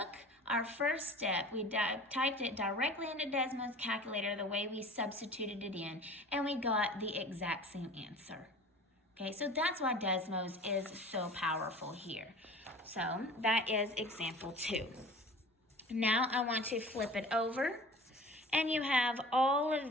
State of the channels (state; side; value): normal; both; correlation 0.42